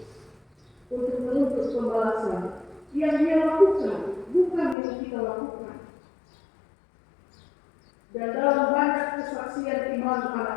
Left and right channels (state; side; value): drops out; right; at 4.8 s